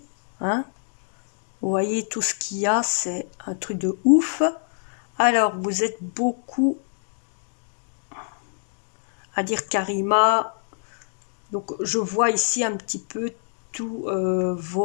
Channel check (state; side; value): silent; right; digital silence